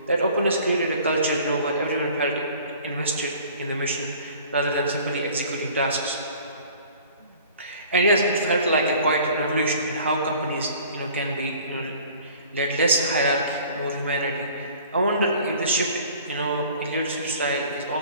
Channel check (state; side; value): inverted; both; correlation -0.49